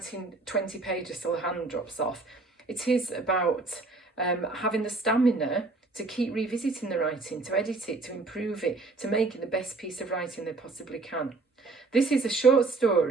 20 pages till the hand drops off. It is about having the stamina to keep revisiting the writing, to edit it, to improve it, to make it the best piece of writing they possibly can. This is a short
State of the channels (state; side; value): quieter; left; 3.5 dB